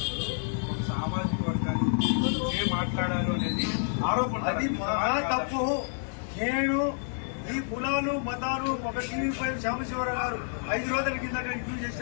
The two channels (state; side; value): silent; right; digital silence